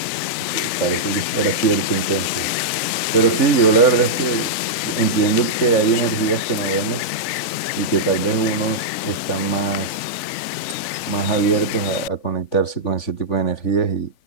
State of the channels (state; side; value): late; right; 3.5 ms